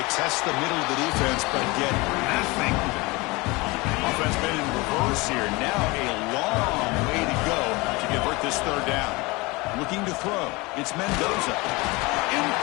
test the middle of the defense, but get nothing. Offense been in reverse here. Now a long way to go to convert this 3rd down. Looking to throw. It's Mendoza.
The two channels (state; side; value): quieter; right; 24.2 dB